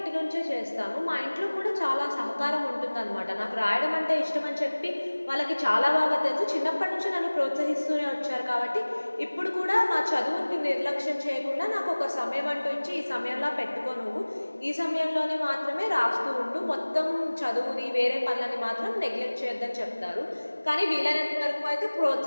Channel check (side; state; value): both; inverted; correlation -1.00